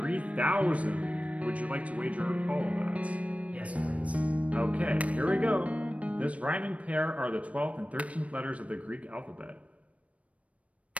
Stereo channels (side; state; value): left; late; 0.065 ms